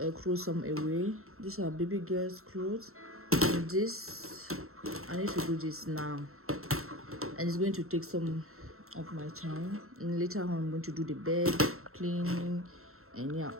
some away. These are baby girl's clothes, and this I need to do this now, and it's going to take some of my time, and later on I'm going to do the bed cleaning, and yeah,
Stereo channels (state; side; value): late; left; 0.63 ms